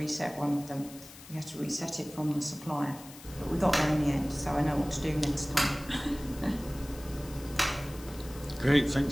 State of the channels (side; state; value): left; noise; hiss, 18 dB below the sound